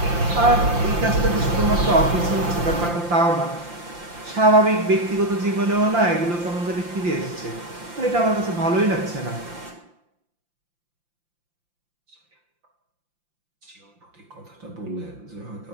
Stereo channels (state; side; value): late; left; 5.8 ms